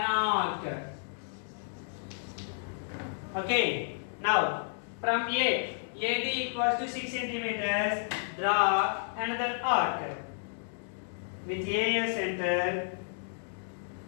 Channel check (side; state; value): right; silent; digital silence